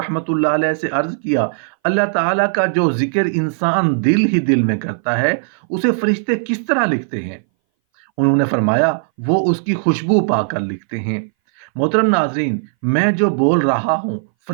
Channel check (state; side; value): silent; left; 62 dB below the other